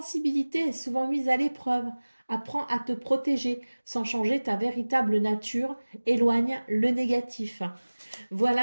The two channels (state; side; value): inverted; both; correlation -1.00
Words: est souvent mise à l'épreuve. Apprends à te protéger sans changer ta véritable nature. Éloigne le négatif.